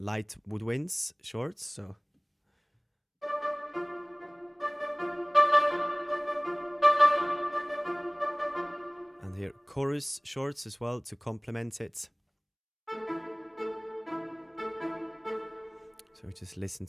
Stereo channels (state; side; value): identical; both; correlation 1.00